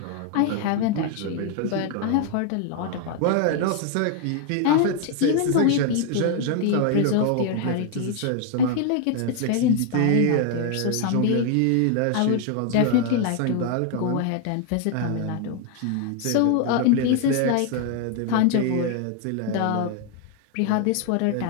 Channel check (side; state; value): both; different; correlation 0.00